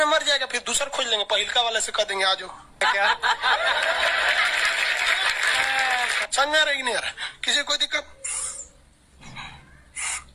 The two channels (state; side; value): identical; both; correlation 1.00